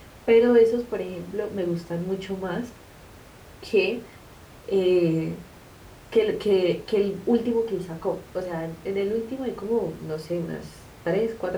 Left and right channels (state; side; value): identical; both; correlation 1.00